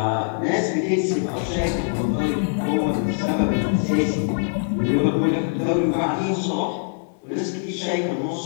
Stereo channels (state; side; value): silent; right; digital silence